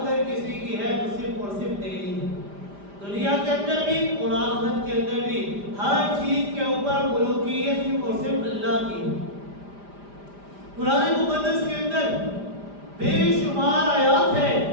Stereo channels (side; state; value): left; late; 5.0 ms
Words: اگر کسی کی ہے تو صرف اور صرف تیری ہے، دنیا کے اندر بھی اور آخرت کے اندر بھی، ہر چیز کے اوپر ملوکیت صرف اور صرف اللہ کی ہے۔ قرآن مقدس کے اندر بے شمار آیات ہیں